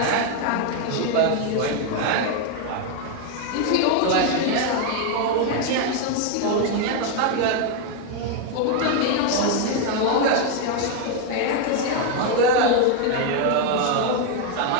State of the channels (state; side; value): different; both; correlation 0.01